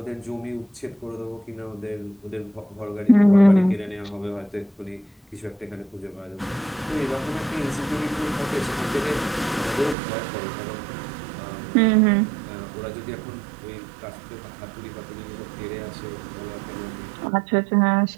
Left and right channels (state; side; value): drops out; left; at 10.0 s